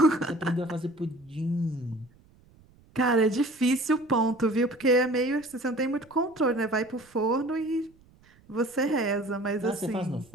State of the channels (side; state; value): right; noise; rumble, 29 dB below the sound